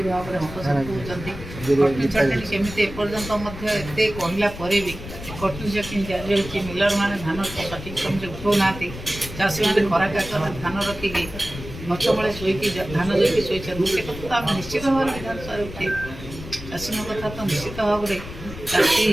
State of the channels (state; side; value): noise; left; rumble, 11 dB below the sound